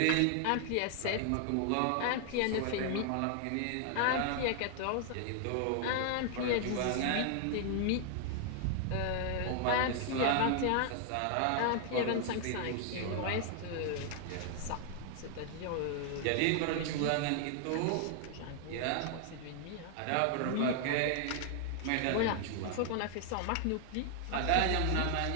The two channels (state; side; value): different; both; correlation 0.00